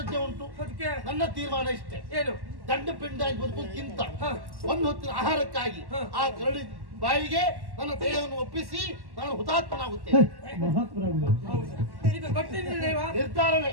ಉಂಟು ನನ್ನ ತೀರ್ಮಾನ ಇಷ್ಟೇ ಏನು ದಂಡ ಪಿಂಡಾಗಿ ಬದುಕೋದಕ್ಕಿಂತ ಒಂದು ಹೊತ್ತಿನ ಆಹಾರಕ್ಕಾಗಿ ಆ ಕರಡಿ ಬಾಯಿಗೆ ನನ್ನ ದೇಹವನ್ನು ಒಪ್ಪಿಸಿ ನಾನು ಹುತಾತ್ಮನಾಗುತ್ತೇನೆ ಇದು ಗೊತ್ತಿಲ್ಲ ನಿರ್ಧಾರವೇ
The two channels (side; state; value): left; late; 1.1 ms